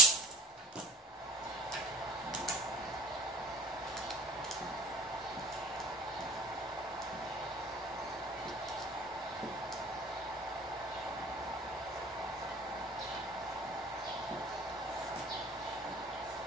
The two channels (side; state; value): both; normal; correlation 0.45